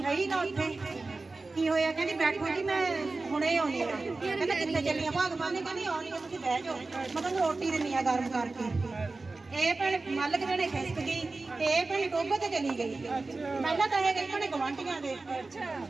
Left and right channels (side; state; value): left; quieter; 3.5 dB